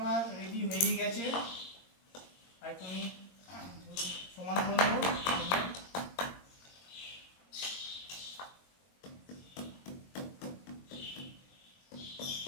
রেডি হয়ে গেছে। আর তুমি সমান করে নেবো।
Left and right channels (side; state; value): right; late; 22 ms